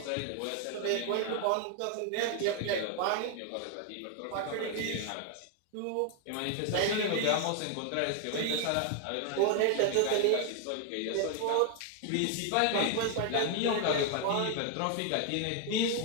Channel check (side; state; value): both; different; correlation 0.00